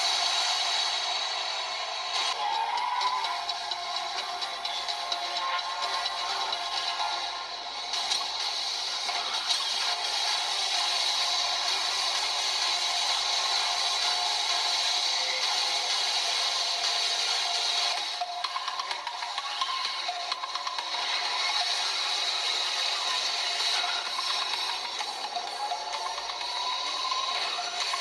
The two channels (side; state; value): both; identical; correlation 1.00